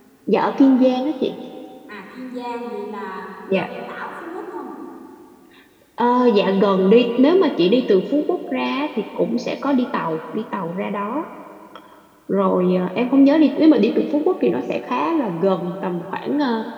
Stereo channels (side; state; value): both; identical; correlation 1.00